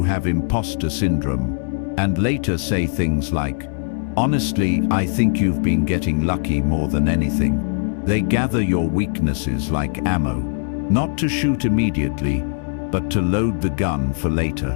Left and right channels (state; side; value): silent; right; digital silence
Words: have imposter syndrome, and later say things like, "Honestly, I think you've been getting lucky more than anything." They gather your weaknesses like ammo, not to shoot immediately, but to load the gun for later.